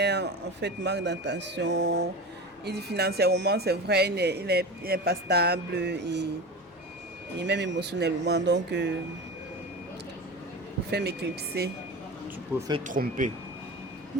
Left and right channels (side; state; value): both; normal; correlation 0.29